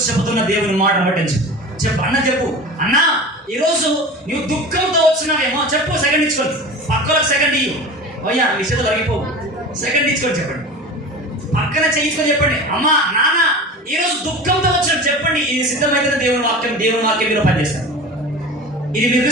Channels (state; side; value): normal; both; correlation 0.34